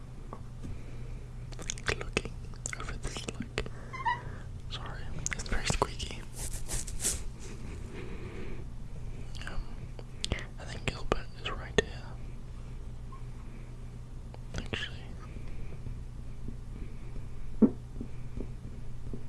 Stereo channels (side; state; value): both; identical; correlation 1.00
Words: over this sorry, it's very squeaky. I think Gilbert is right here. Actually.